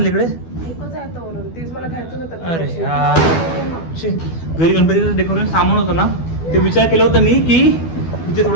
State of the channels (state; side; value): late; right; 12 ms